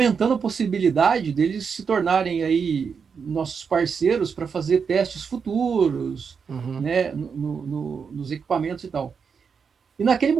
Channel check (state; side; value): quieter; left; 6.1 dB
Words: a possibilidade deles se tornarem aí nossos parceiros para fazer testes futuros, né, nos equipamentos e tal. E naquele